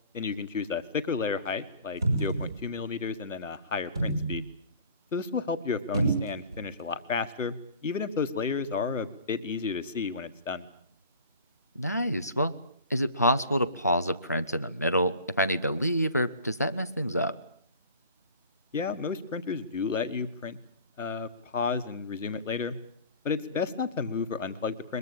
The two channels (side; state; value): both; inverted; correlation -0.43